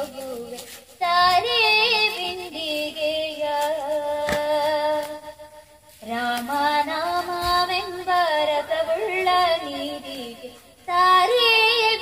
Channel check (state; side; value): identical; both; correlation 1.00